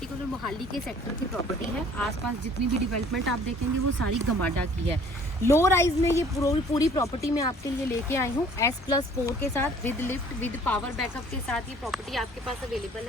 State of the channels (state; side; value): normal; both; correlation 0.54